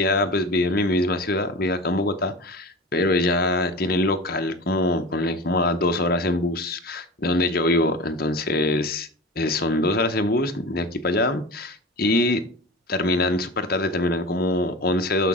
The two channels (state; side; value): normal; both; correlation 0.32